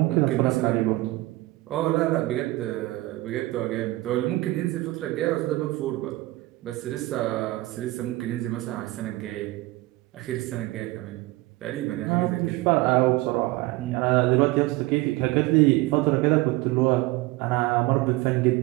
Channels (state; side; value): quieter; left; 19.8 dB